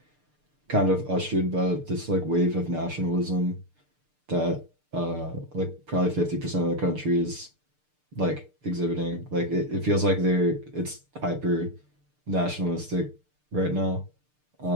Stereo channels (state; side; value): late; left; 6.7 ms